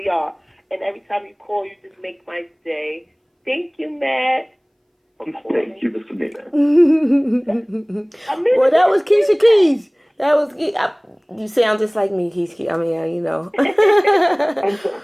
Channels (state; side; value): identical; both; correlation 1.00